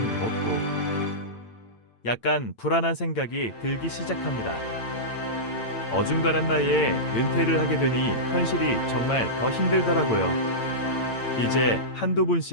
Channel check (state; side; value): late; right; 8.8 ms